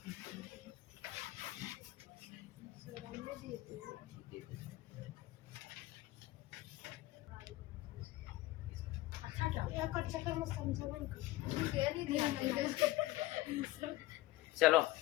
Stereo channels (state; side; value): quieter; right; 17.7 dB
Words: अच्छा क्या या कर चक्कर में समझाना चलो